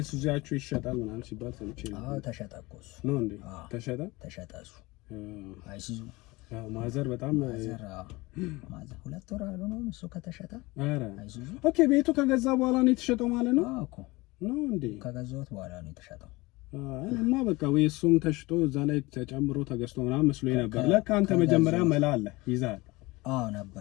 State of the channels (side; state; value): right; quieter; 22.3 dB